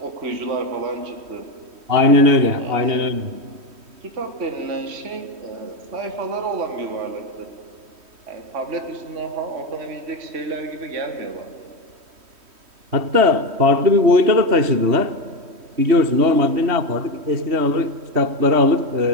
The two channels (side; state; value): left; late; 3.1 ms